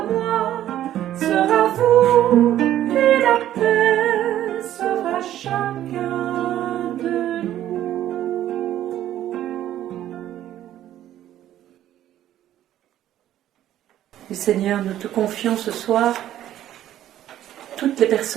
moi, sera vous, et la paix sera chacun de nous. Et Seigneur, nous te confions ce soir toutes les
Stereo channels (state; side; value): quieter; left; 12.3 dB